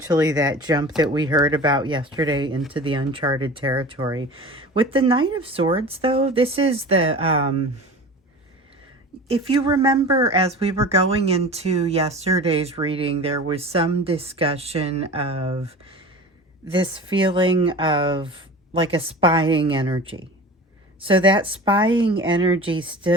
that jump that we heard about yesterday into the uncharted territory. With the Knight of Swords, though, this is the, if you remember, as we were going into yesterday's reading, there was some discussion of this feeling of like a spying energy. So that spying energy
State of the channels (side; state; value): both; normal; correlation 0.36